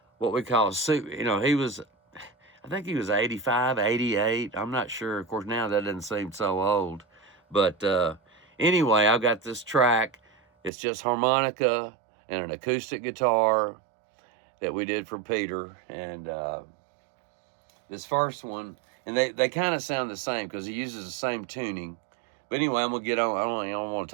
what we call, you know, I think he was 85, 88. I'm not sure. Of course, now that doesn't seem so old. But anyway, I've got this track. It's just harmonica and an acoustic guitar that we did for Peter. And this first one, and they kind of sound the same because he uses the same tuning. But anyway, I'm going to get on. I don't want to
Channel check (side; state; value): left; drops out; at 10.7 s